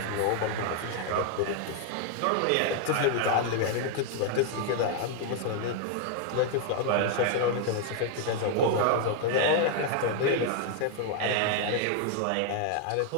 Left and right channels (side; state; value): both; different; correlation 0.00